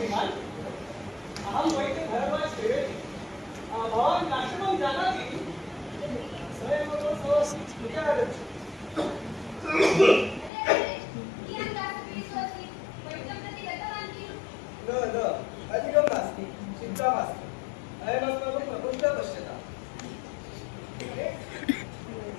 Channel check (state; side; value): drops out; right; at 10.5 s